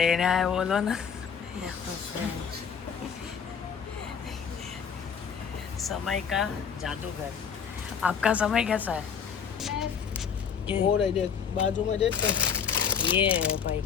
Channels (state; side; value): quieter; right; 6.9 dB